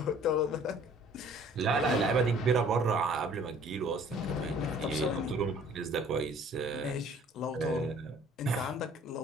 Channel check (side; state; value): both; normal; correlation 0.54